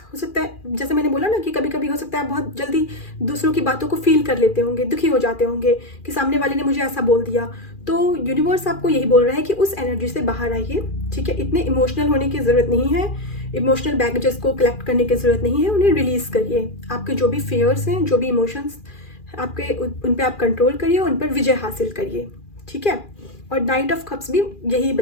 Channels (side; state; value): right; late; 2.4 ms